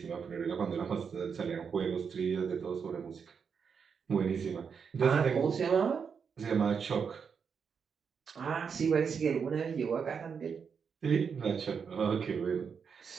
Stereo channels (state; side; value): quieter; left; 6.3 dB